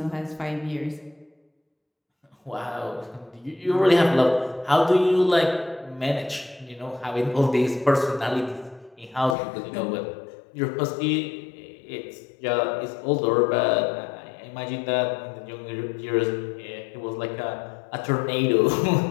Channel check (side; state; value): right; drops out; at 9.3 s